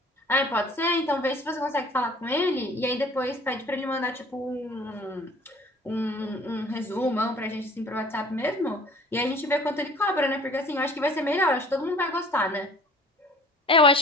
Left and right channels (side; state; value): both; normal; correlation 0.50